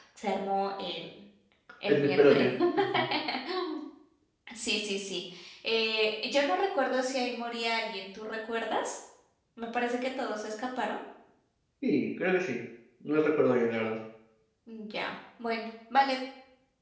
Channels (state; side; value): identical; both; correlation 1.00